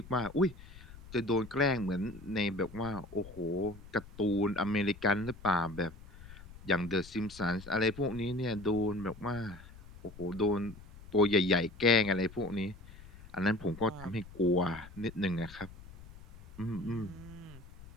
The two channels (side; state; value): left; noise; rumble, 18 dB below the sound